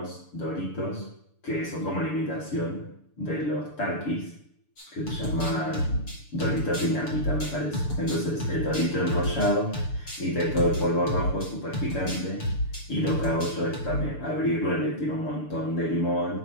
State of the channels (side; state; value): right; late; 6.9 ms